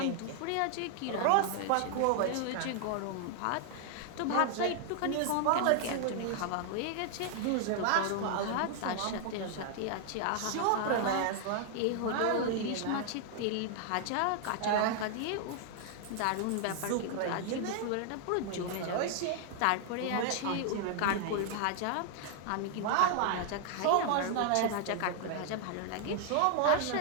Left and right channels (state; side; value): different; both; correlation 0.00